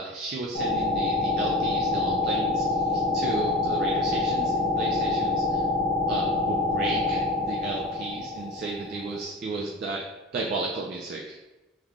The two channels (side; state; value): both; normal; correlation 0.30